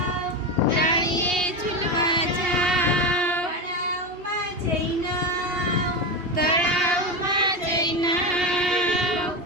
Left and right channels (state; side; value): late; left; 2.8 ms